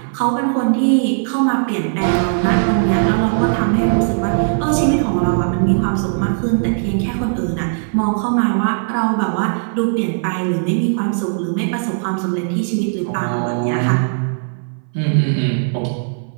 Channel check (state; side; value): silent; left; 59 dB below the other